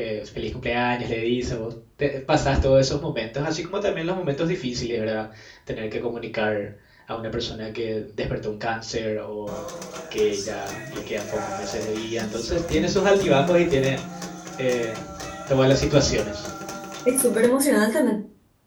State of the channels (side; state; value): both; identical; correlation 1.00